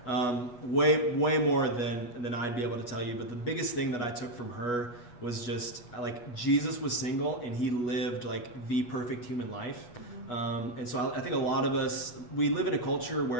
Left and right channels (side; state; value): right; late; 8.2 ms